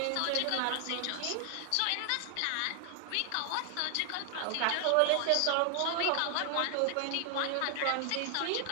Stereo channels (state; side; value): different; both; correlation 0.00